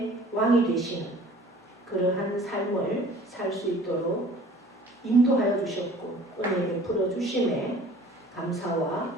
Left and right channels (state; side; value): normal; both; correlation 0.49